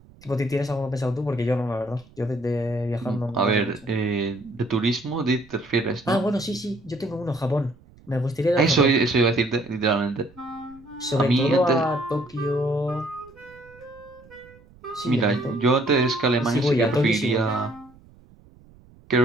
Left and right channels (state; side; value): noise; right; rumble, 26 dB below the sound